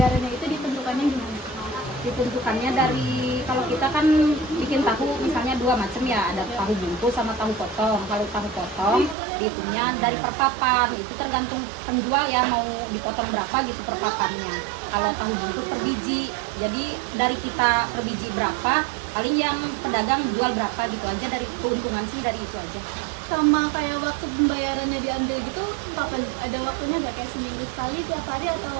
itu ditentukannya gimana? Ditentukannya dari, kalau kita kan bikin tahu misalnya dua macam ya, ada tahu bungkus sama tahu potong. Kalau tahu potong dihitungnya dari per papan, itu tergantung penjual ya mau dipotong berapa gitu per papannya. Kalau tahu bungkus per biji, jadi dari kita per biji berapa, paling yang pedagang jual berapa gitu aja, dari keuntungan sih dari itu aja. Sama kayak waktu pembayarannya diambil gitu, kapan ada waktunya nggak, kayak seminggu sekali, tiap hari, atau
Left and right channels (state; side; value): drops out; left; at 9.2 s